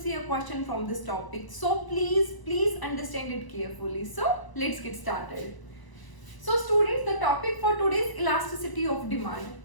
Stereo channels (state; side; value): late; right; 1.0 ms